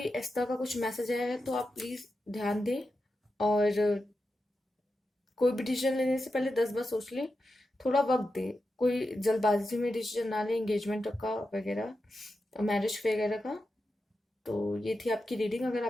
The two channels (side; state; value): both; normal; correlation 0.90